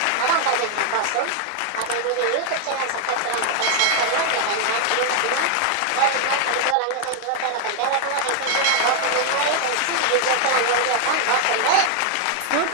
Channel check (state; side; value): different; both; correlation 0.00